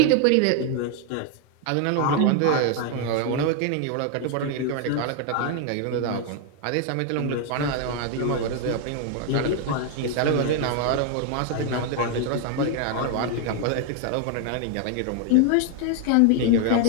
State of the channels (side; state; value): both; different; correlation 0.00